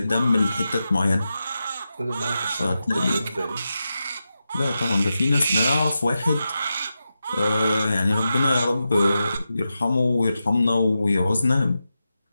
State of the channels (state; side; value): inverted; both; correlation -0.90